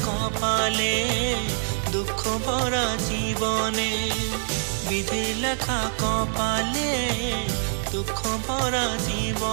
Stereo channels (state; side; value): silent; left; digital silence